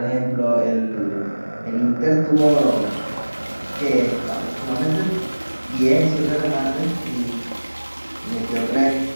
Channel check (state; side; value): inverted; both; correlation -1.00